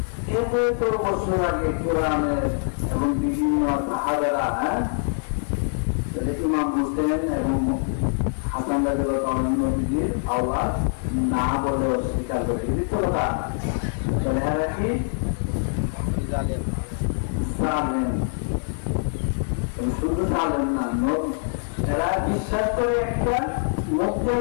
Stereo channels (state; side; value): silent; right; 62 dB below the other